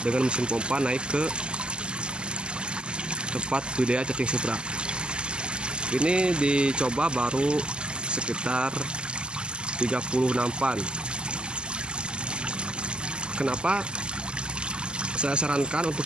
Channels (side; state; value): left; late; 0.048 ms